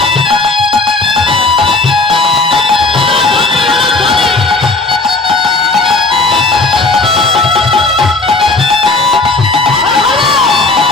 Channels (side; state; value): right; quieter; 3.3 dB